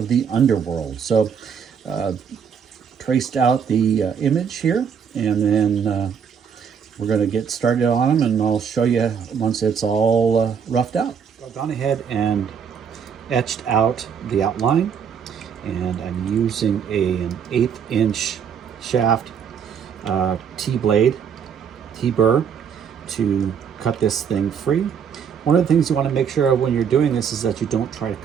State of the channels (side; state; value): left; quieter; 7.2 dB